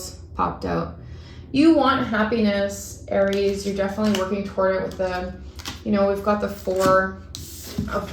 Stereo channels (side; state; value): both; identical; correlation 1.00